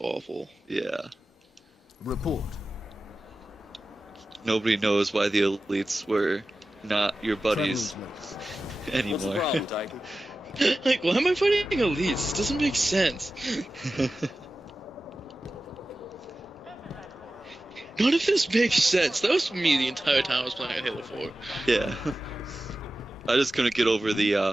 awful. Yeah. Report. Nobody knows why the elites were not your buddies Travelers anymore. What's the problem, Tiger? Like, why am I fighting elites? This doesn't make sense. None of this makes sense. That was me the entire time I was playing Halo 4. Yeah. I just couldn't get over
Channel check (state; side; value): normal; both; correlation 0.95